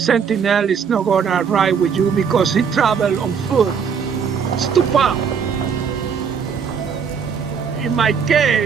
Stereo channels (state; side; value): quieter; left; 6.6 dB